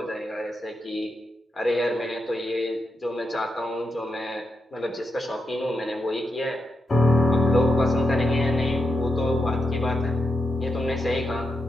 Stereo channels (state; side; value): normal; both; correlation 0.86